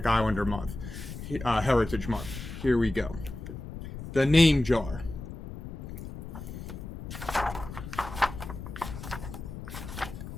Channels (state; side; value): noise; left; rumble, 10 dB below the sound